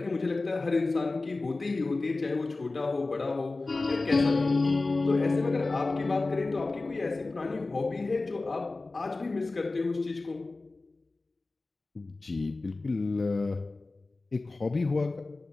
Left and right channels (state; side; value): quieter; right; 3.4 dB